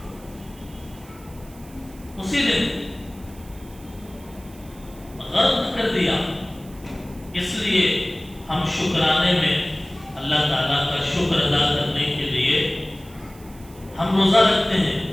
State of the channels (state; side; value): noise; right; hiss, 23 dB below the sound